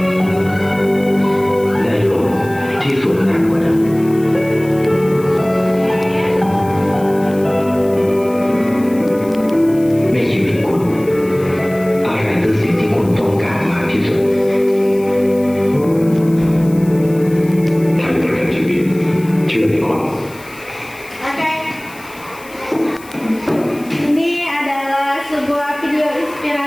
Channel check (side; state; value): left; noise; hiss, 21 dB below the sound